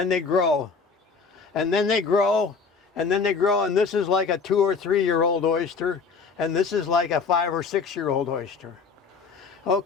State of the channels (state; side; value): quieter; right; 5.1 dB